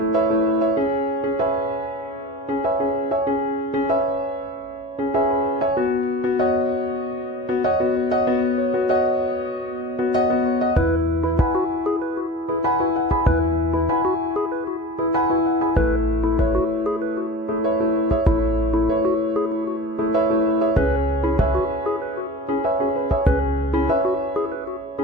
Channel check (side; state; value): both; normal; correlation 0.35